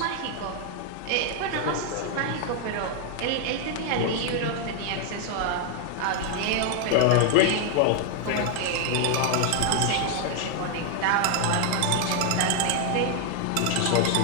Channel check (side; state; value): both; different; correlation 0.00